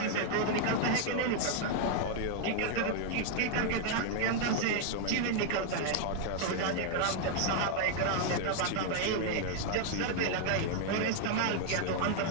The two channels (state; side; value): different; both; correlation 0.00